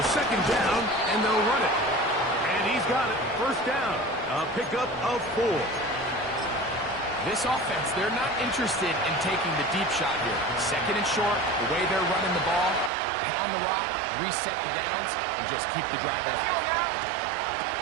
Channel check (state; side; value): drops out; left; at 12.9 s